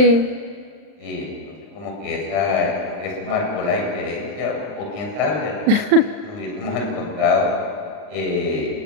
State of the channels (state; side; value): late; left; 39 ms